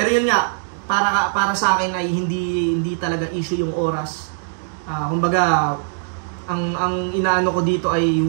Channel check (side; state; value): left; silent; 65 dB below the other